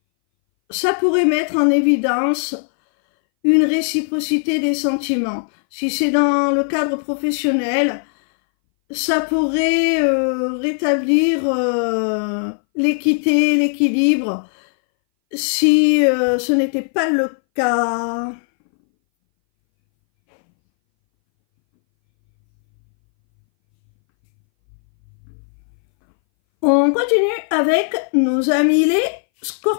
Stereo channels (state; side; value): silent; right; 62 dB below the other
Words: ça pourrait mettre en évidence une réciprocité des sentiments. Si c'est dans le cadre professionnel, ça pourrait rétablir l'équité, l'équilibre, si ce n'était pas le cas. On continue avec nos amis les